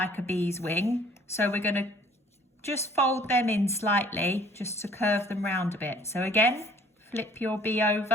a bee's wing. So we're going to just fold them in slightly just to curve them round a bit. So again, flip your bee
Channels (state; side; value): normal; both; correlation 0.56